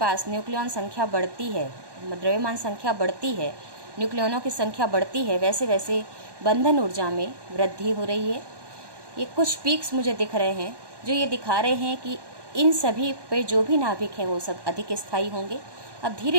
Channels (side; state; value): left; late; 1.1 ms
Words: न्यूक्लियॉन संख्या बढ़ती है, द्रव्यमान संख्या बढ़ती है, न्यूक्लियनों की संख्या बढ़ती है, वैसे वैसे बंधन ऊर्जा में वृद्धि हो रही है। ये कुछ पीक्स मुझे दिख रहे हैं जो ये दिखा रहे हैं कि इन सभी पे जो भी नाभिक हैं वो सब अधिक स्थायी होंगे। अब